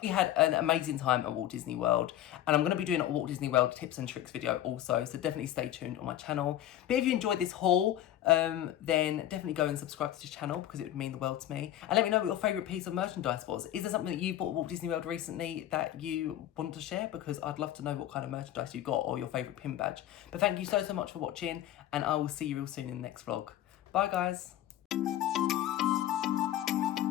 we had an amazing time at Walt Disney World, and I'm going to be doing a Walt Disney World tips and tricks video also, so definitely stay tuned on my channel. But if you enjoyed this haul, then definitely go and subscribe to this channel because it would mean the world to me. And let me know what your favourite piece of merchandise was. Is there something that you bought at Walt Disney World recently that you want to share? Because I'd love to know what kind of merchandise you got or your favourite pin badge. But thank you so much for watching, and I will see you real soon in the next vlog. Bye guys.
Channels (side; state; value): right; quieter; 12.4 dB